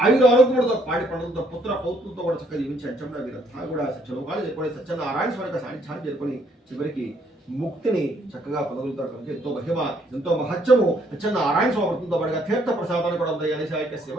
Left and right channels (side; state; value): both; normal; correlation 0.68